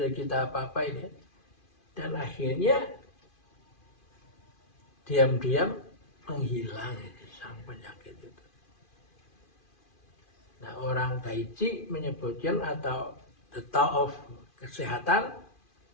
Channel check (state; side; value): late; right; 2.5 ms